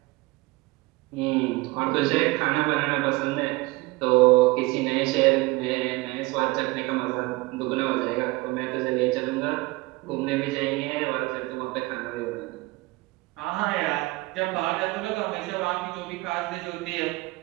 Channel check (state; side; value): quieter; left; 22.3 dB